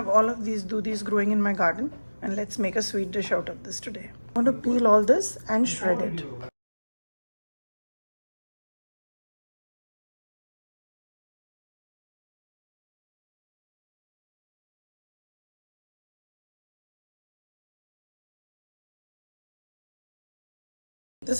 all of these dudhis growing in my garden, and let's make a sweet dish out of this today. I'm going to peel all this and shred it.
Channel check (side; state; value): both; inverted; correlation -1.00